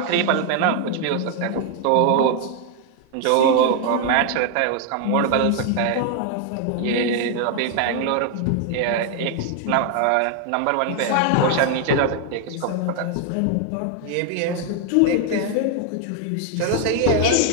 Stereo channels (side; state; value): both; different; correlation 0.00